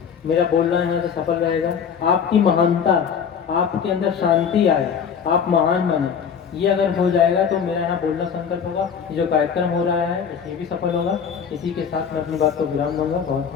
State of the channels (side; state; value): right; quieter; 7.1 dB